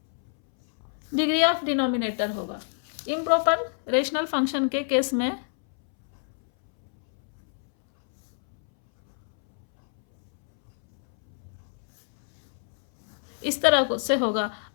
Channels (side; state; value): right; silent; 61 dB below the other